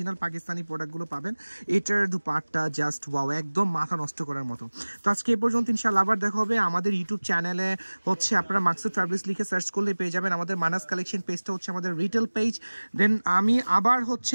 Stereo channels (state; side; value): inverted; both; correlation -1.00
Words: পাকিস্তানি প্রোডাক্টগুলো পাবেন। এটার দুপাট্টা জাস্ট ওয়াও, একদম মাথা নষ্ট করার মতো। তো আজকে এ পর্যন্ত, ইনশাআল্লাহ আবার দেখা হবে। আমাদের ইউটিউব চ্যানেলে হচ্ছে আপনারা মাকসুদ ফ্যাব্রিক্স লিখে সার্চ করলে পেয়ে যাবেন। আমাদের মানাস কালেকশন পেজটা হচ্ছে আমাদের রিটেল পেজ। দেন আমি আবার হচ্ছে